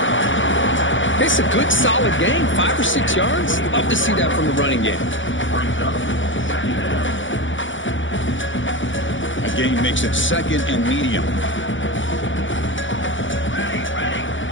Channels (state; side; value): late; right; 0.56 ms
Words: It's a good, solid game. 5 or 6 yards. Love to see that from the running game. A gain makes it 2nd and medium.